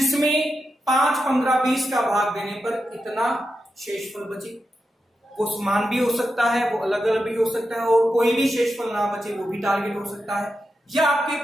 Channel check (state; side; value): normal; both; correlation 0.88